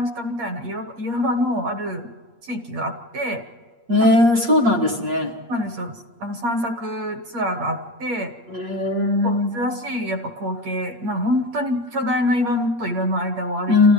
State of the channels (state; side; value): late; left; 8.5 ms